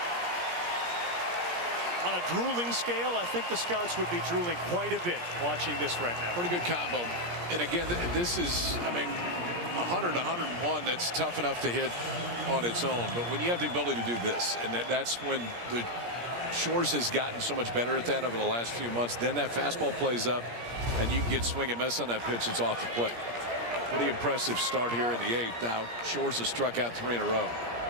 On a drooling scale, I think the scouts would be drooling quite a bit watching this right now. Pretty good combo. And again, this is, I mean, 100, 101, that's tough enough to hit on its own. But when you have the ability to do this, and that's when the Shores has gotten so much better at that over the last few months, then that fastball plays up and you can get swing and miss on that pitch. It's off the plate. Pretty impressive start here in the 8th. Now Shores has struck out 3 in a row.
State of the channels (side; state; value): left; late; 17 ms